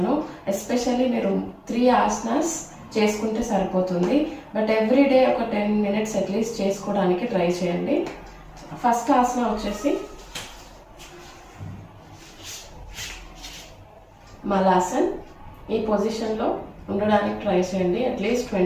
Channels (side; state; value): both; identical; correlation 1.00